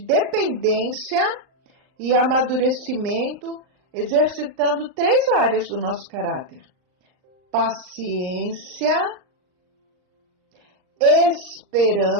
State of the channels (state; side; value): late; left; 39 ms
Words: dependência e amadurecimento, exercitando 3 áreas do nosso caráter: paciência,